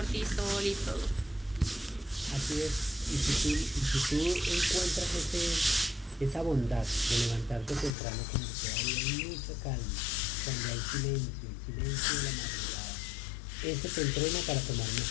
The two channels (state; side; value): drops out; right; at 7.9 s